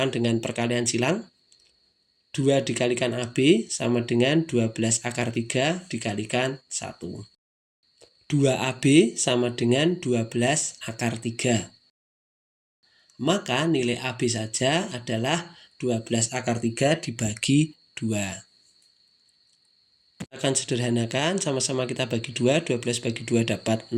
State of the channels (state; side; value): identical; both; correlation 1.00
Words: dengan perkalian silang. 2 dikalikan AB sama dengan 12 akar 3 dikalikan 1. 2AB sama dengan 12 akar 3. Maka nilai AB saja adalah 12 akar 3 dibagi 2. Akan sederhanakan, sama-sama kita bagi 2, 12 bagi 2 dapat